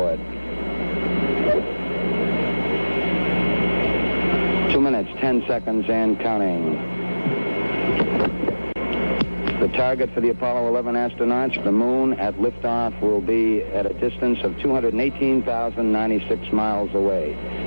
2 minutes, 10 seconds and counting. The target for the Apollo 11 astronauts, the moon at liftoff, will be at a distance of 218,096 miles away.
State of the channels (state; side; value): inverted; both; correlation -1.00